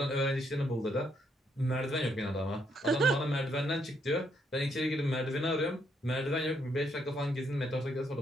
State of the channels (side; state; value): both; normal; correlation 0.74